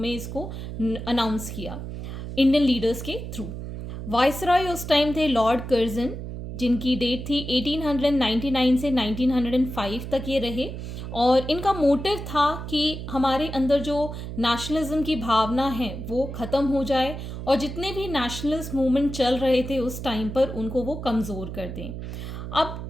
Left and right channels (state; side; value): noise; right; hum, 8 dB below the sound